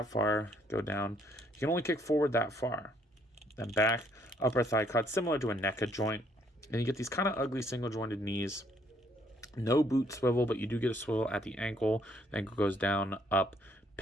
far, go down. You can only kick forward that far. Then back, upper thigh cut, similar to a NECA joint. And you get these kind of ugly single jointed knees. No boot swivel, but you do get a swivel at the ankle. The ankle goes down, up,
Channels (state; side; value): normal; both; correlation 0.67